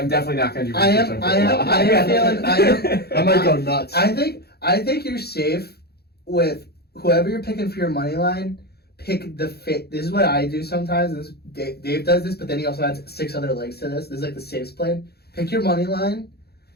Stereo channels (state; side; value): late; right; 0.46 ms